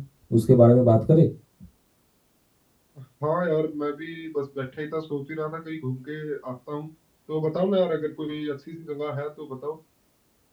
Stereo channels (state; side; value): identical; both; correlation 1.00